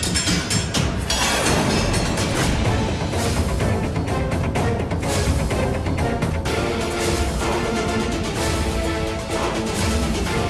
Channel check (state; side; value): identical; both; correlation 1.00